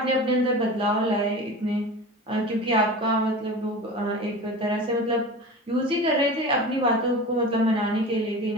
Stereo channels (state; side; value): normal; both; correlation 0.33